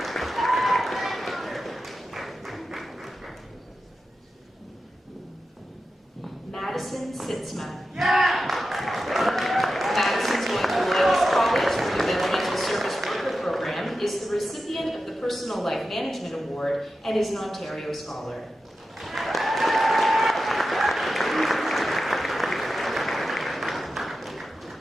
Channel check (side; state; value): both; normal; correlation 0.91